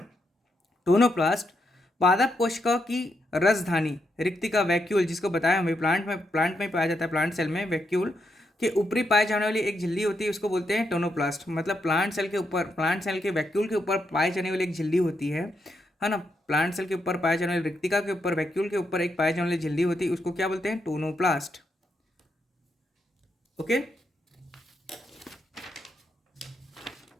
टोनोप्लास्ट पादप कोशिका की रसधानी रिक्तिका वैक्यूल, जिसको बताया हमें प्लांट में पाया जाता है, प्लांट सेल में वैक्यूल के ऊपरी पाए जाने वाली एक झिल्ली होती है, उसको बोलते हैं टोनोप्लास्ट। मतलब प्लांट सेल के वैक्यूल के ऊपर पाए जाने वाली एक झिल्ली होती है ना, प्लांट सेल के ऊपर पाए जाने वाली रिक्तिका के ऊपर वैक्यूल के ऊपर एक पाए जाने वाली झिल्ली होती है, उसको क्या बोलते हैं, टोनोप्लास्ट। ओके,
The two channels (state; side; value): normal; both; correlation 0.81